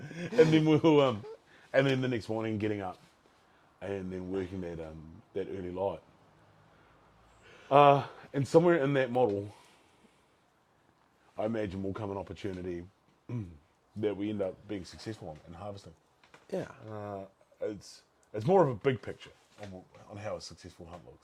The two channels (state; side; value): identical; both; correlation 1.00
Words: And then we'll and then the next morning getting up and then working that early light. And somewhere in that model, I imagine will come an opportunity that we end up being successful on harvesting. Yeah. It's more of a big picture on how a successful hunt